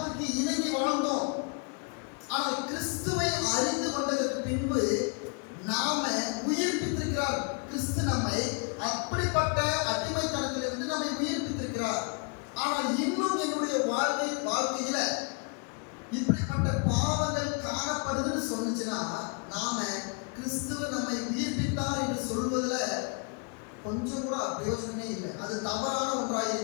இணங்கி வாழ்ந்தோம். ஆனால் கிறிஸ்துவை அறிந்து கொண்டதற்கு பின்பு நாம உயிர்ப்பித்திருக்கிறார். கிறிஸ்து நம்மை அப்படிப்பட்ட அடிமைத்தனத்திலிருந்து நம்மை உயிர்ப்பித்திருக்கிறார். ஆனால் இன்னும் என்னுடைய வாழ்க்கையில இப்படிப்பட்ட பாவங்கள் காணப்படுதுன்னு சொன்னுச்சுன்னா நாம கிறிஸ்துவ நம்மை உயிர்ப்பித்தார் என்று சொல்வதுல கொஞ்சம் கூட பிரயோஜனமே இல்லை. அது தவறான ஒன்றாக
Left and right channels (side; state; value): right; quieter; 36.5 dB